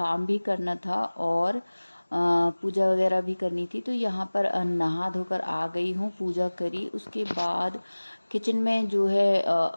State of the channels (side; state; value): both; inverted; correlation -1.00